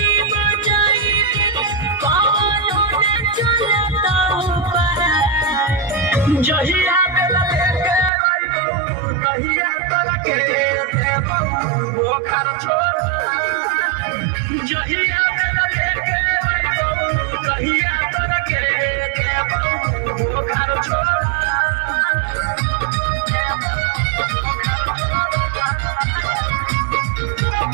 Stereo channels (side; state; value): left; drops out; at 8.1 s